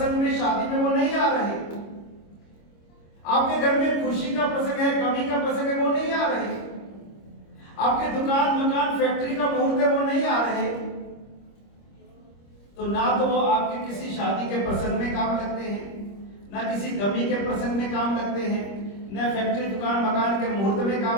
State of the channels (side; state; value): right; late; 25 ms